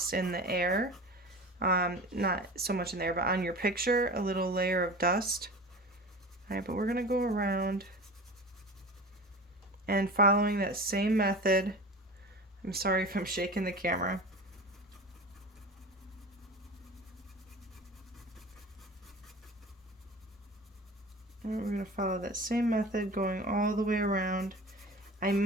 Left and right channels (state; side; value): normal; both; correlation 0.35